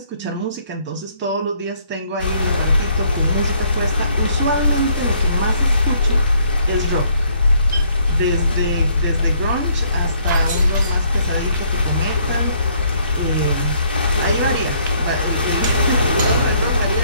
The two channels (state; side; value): inverted; both; correlation -0.66